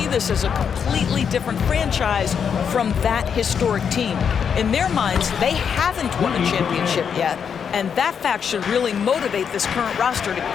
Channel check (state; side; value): quieter; right; 7.2 dB